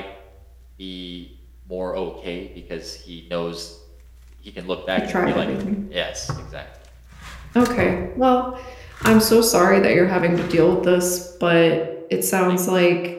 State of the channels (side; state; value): both; identical; correlation 1.00